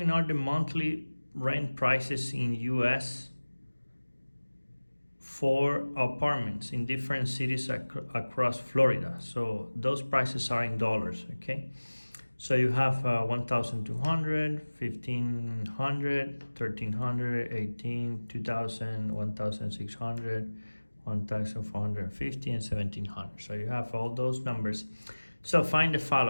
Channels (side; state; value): both; inverted; correlation -1.00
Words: are the monthly rent prices in U.S. for apartments in different cities across Florida. So those prices are in dollars, okay? So you have 1,200, 1,500, 1,300, 18, 2,000, 1,600, 1,450, and 1,700. So you have all those numbers. So find the